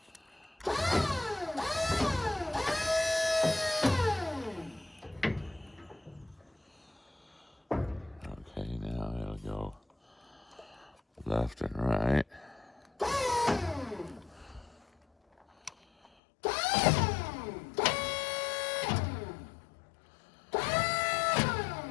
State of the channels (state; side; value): drops out; right; at 16.1 s